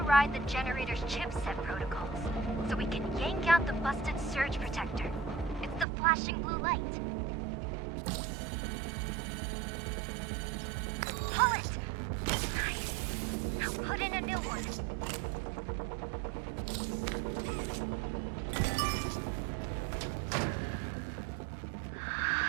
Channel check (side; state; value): left; drops out; at 5.9 s